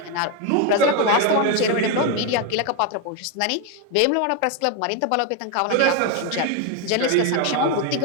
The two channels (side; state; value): both; different; correlation 0.02